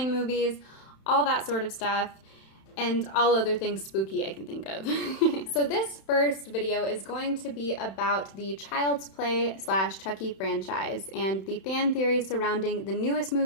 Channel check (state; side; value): late; right; 31 ms